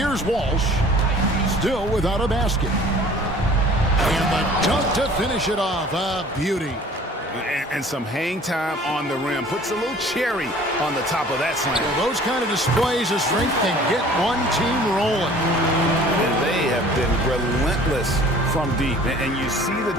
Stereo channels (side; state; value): both; normal; correlation 0.49